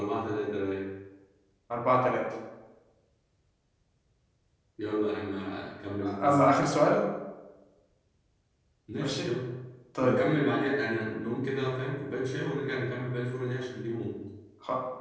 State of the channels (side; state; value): both; identical; correlation 1.00